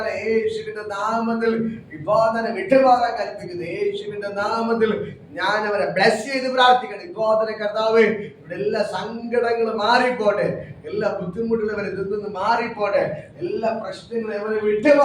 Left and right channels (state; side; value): identical; both; correlation 1.00